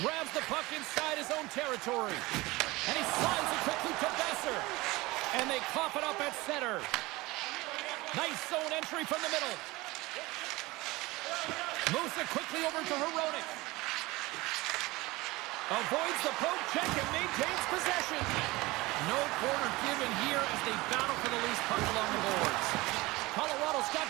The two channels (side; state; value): left; quieter; 21.2 dB